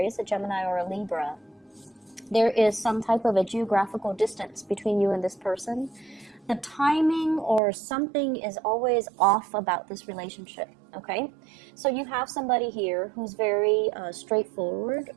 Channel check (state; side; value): drops out; left; at 7.6 s